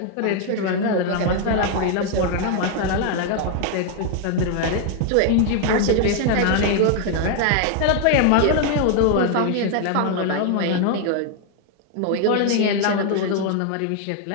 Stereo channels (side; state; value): both; different; correlation 0.00